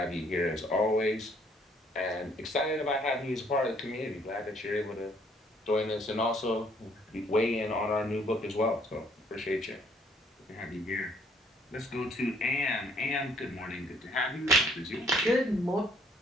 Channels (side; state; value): both; normal; correlation 0.63